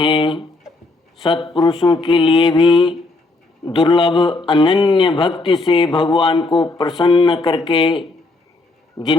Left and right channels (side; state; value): right; quieter; 3.2 dB